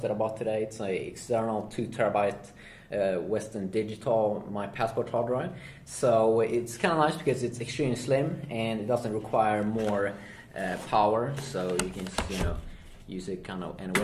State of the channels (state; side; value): identical; both; correlation 1.00